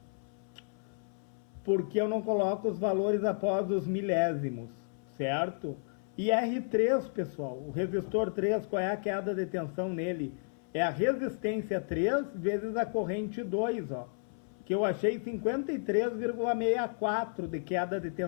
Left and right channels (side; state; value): right; silent; 56 dB below the other